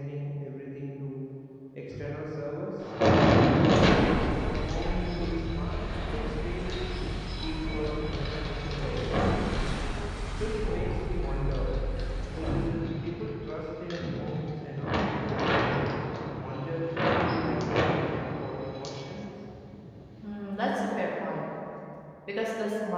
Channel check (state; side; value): identical; both; correlation 1.00